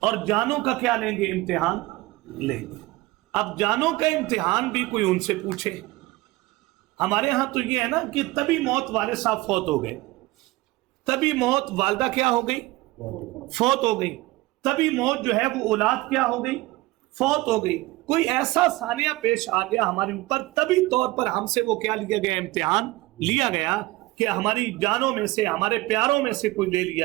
اور جانوں کا کیا لیں گے، امتحان لیں گے. اب جانوں کا امتحان بھی کوئی ان سے پوچھے. ہمارے ہاں تو یہ ہے نا کہ تبھی موت والے صاحب فوت ہو گئے، تبھی موت والدہ کیا ہو گئی، فوت ہو گئی، تبھی موت جو ہے وہ اولاد کیا ہو گئی، فوت ہو گئی. کوئی ایسا ثانیہ پیش آ گیا ہمارے اوپر، طبی طور پر ہم سے وہ کیا لیا گیا، امتحان لیا گیا کہ ہماری جانوں میں سے، ہمارے پیاروں میں سے کوئی لے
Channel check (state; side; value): quieter; left; 20.2 dB